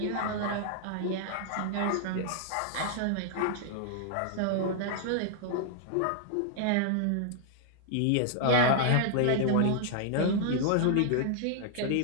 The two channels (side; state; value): both; different; correlation -0.01